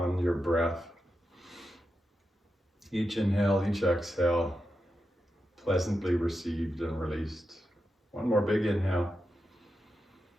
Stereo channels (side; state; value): both; normal; correlation 0.88